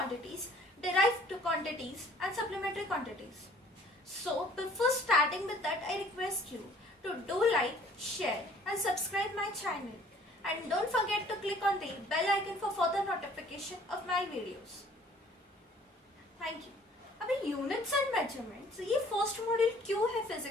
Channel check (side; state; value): both; normal; correlation 0.55